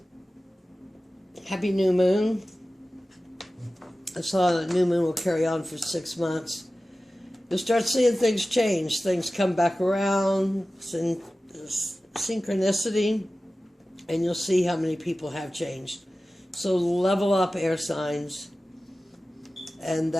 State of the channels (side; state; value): both; normal; correlation 0.96